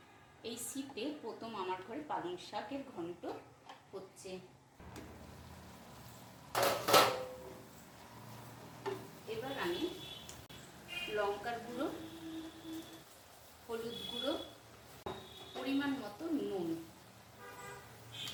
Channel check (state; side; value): identical; both; correlation 1.00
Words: এই শীতে প্রথম আমার ঘরে পালং শাকের ঘন্ট হচ্ছে। এবার আমি লঙ্কার গুঁড়ো, হলুদ গুঁড়ো, পরিমাণ মতো নুন,